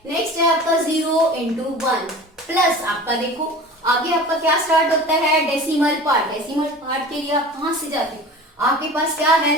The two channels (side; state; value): both; normal; correlation 0.38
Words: नेक्स्ट है आपका 0 into 1 प्लस आपका देखो आगे आपका क्या स्टार्ट होता है डेसिमल पार्ट। डेसिमल पार्ट के लिए आप कहां से जाते हो, आपके पास क्या है